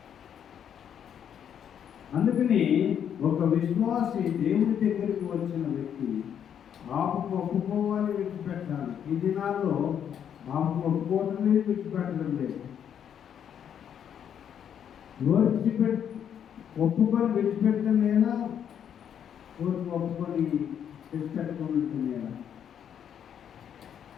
అందుకని ఒక విశ్వాసి దేవుని దగ్గరికి వచ్చిన వ్యక్తి పాపము ఒప్పుకోవాలి, విడిచిపెట్టాలి. ఈ దినాల్లో పాపము ఒప్పుకోవడం లేదు, విడిచిపెట్టడం లేదు. ఒప్పుకొని విడిచిపెట్టడం లేదా, ఒప్పుకొని విడిచిపెట్టుకోవడం లేదా?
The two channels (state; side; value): quieter; right; 8.8 dB